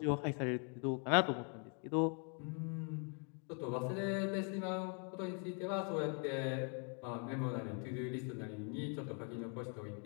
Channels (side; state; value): right; quieter; 39.8 dB